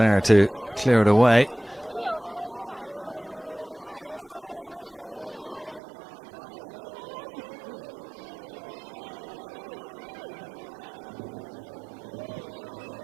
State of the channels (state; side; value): drops out; left; at 5.8 s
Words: to clear it away.